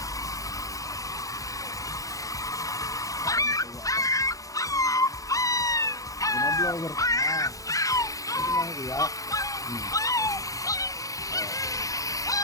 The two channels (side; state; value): right; late; 0.17 ms